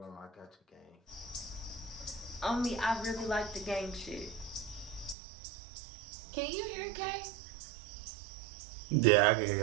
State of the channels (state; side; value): drops out; left; at 5.2 s